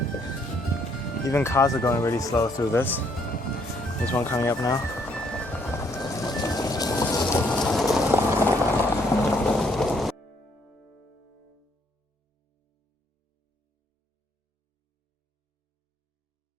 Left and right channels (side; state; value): both; normal; correlation 0.68